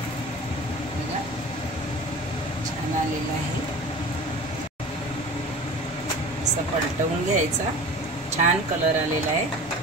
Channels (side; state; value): both; normal; correlation 0.38